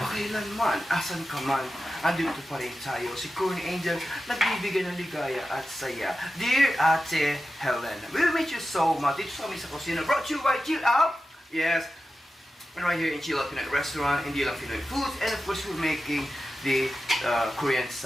asan ka man, andito pa rin tayo. Si Korean Angel, nagbibigay ng ligaya at saya. Dear Ate Helen, we miss you so much. Dito sa amin sa kusina, brought you by Chill Out. Yes. And right here in Chill Out Pinoy Restaurant, hindi lang Pinoy foods, and of course we're making the Korean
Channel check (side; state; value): both; normal; correlation 0.92